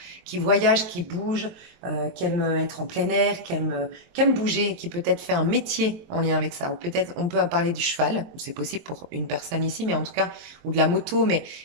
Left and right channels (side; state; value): left; late; 23 ms